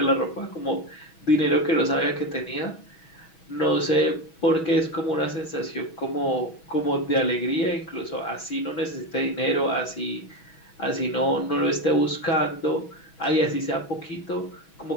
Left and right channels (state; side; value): late; right; 6.2 ms